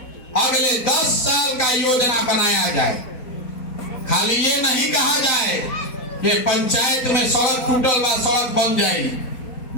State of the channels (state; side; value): late; right; 4.2 ms